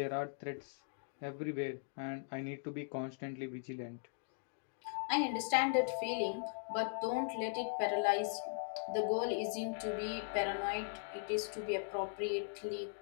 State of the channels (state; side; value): silent; right; digital silence